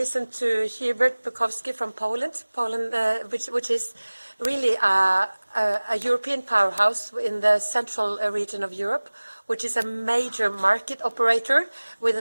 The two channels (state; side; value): inverted; both; correlation -1.00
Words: to Hubert Bukowski from Poland, which is really a European powerhouse in the central region of Europe, which is a major market operator